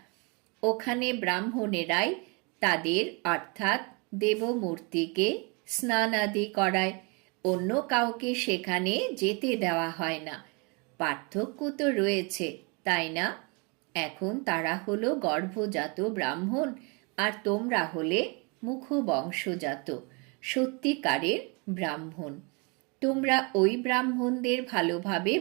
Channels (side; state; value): left; quieter; 31.5 dB